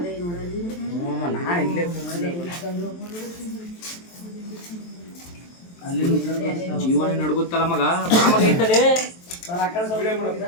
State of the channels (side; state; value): right; late; 23 ms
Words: ಜೀವನ ನಡ್ಗುತ್ತಲ್ಲ ಮಗ.